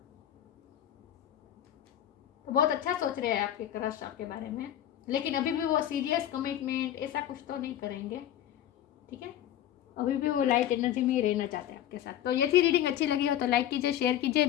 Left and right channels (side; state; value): right; quieter; 11.5 dB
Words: तो बहुत अच्छा सोच रहे हैं आपके क्रश आपके बारे में। लेकिन अभी भी वो सीरियस कमिटमेंट ऐसा कुछ तो नहीं करेंगे, ठीक है। अभी भी वो लाइट एनर्जी में ही रहना चाहते हैं आपके साथ। तो ये थी रीडिंग, अच्छी लगी हो तो लाइक कीजिए, शेयर कीजिए।